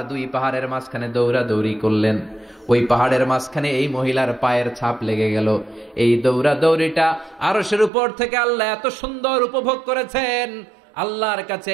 2 পাহাড়ের মাঝখানে দৌড়াদৌড়ি করলেন। ওই পাহাড়ের মাঝখানে এই মহিলার পায়ের ছাপ লেগে গেল। এই দৌড়াদৌড়িটা আরশের উপর থেকে আল্লাহ এত সুন্দর উপভোগ করেছেন। আল্লাহর কাছে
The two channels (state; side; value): drops out; left; at 7.9 s